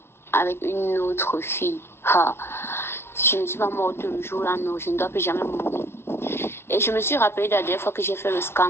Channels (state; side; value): late; right; 0.12 ms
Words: avec une autre fille. Ah, si je ne suis pas morte le jour-là, non, je ne dois plus jamais mourir. Et je me suis rappelé de la dernière fois que j'ai fait le